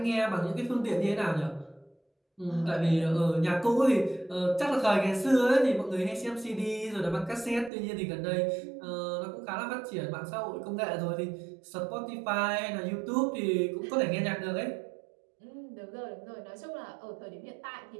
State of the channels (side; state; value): left; drops out; at 7.7 s